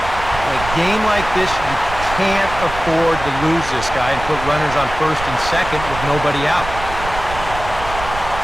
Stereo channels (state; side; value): noise; right; rumble, 10 dB below the sound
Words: In a game like this, you can't afford to lose this guy and put runners on first and second with nobody out.